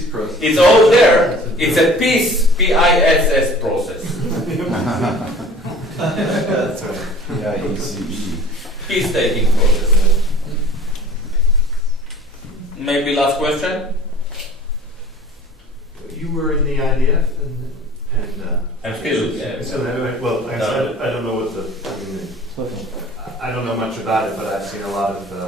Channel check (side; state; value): both; normal; correlation 0.46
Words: process. It's all there. It's a peace, P-I-S-S process. That's right. P-I-E-C-E. Peace-taking process. Maybe last question? You were in the IDF and I'm still, yeah. So anyway, well, I don't know what I don't know much about it, but I've seen a lot of,